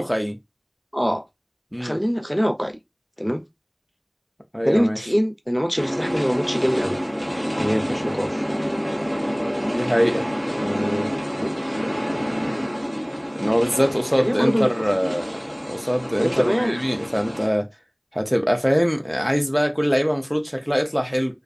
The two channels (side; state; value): both; identical; correlation 1.00